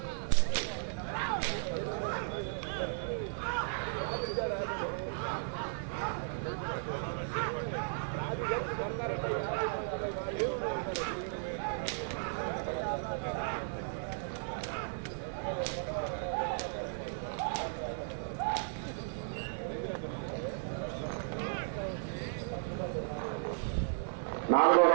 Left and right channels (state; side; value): silent; left; 54 dB below the other